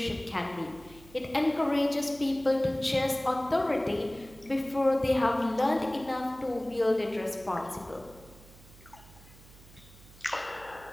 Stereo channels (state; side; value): noise; right; hum, 22 dB below the sound